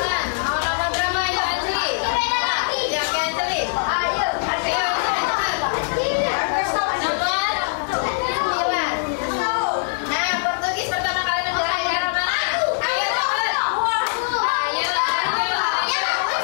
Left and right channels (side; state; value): right; silent; 56 dB below the other